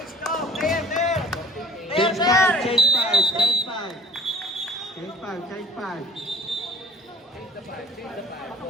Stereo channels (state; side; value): normal; both; correlation 0.47